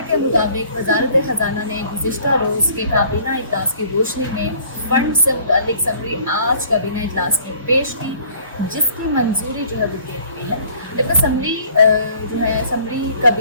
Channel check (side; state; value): both; inverted; correlation -0.55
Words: के मुताबिक वज़ारत ख़जाना ने गुज़िश्ता रोज़ के काबीना इजलास की रोशनी में फंड से मुतल्लिक समरी आज काबीना इजलास में पेश की, जिसकी मंजूरी जो है वो दे दी है। जबकि समरी जो है समरी